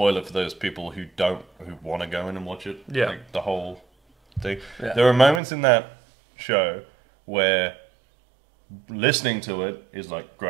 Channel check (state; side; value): drops out; left; at 5.4 s